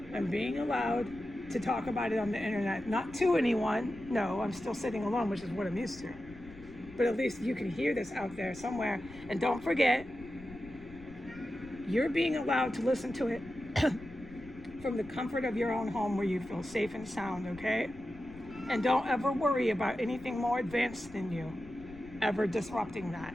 I'm being allowed to talk about it on the internet, not to anyone. No, I'm still sitting alone, which is what I'm used to. But at least you can hear this out there somewhere. And don't forget, you're being allowed to listen to it from the comfort of your own home where you feel safe and sound, okay? And don't ever worry about anything more advanced than you ever disrupting that.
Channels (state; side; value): noise; left; rumble, 20 dB below the sound